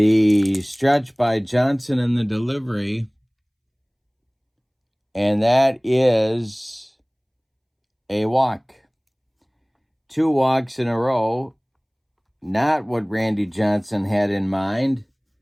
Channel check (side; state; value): both; identical; correlation 1.00